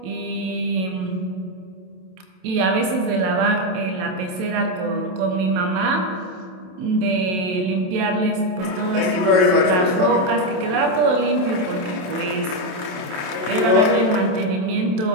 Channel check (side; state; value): left; late; 27 ms